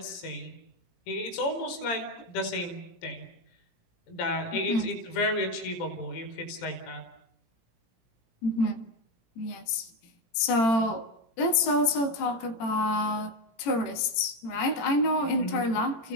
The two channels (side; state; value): right; late; 18 ms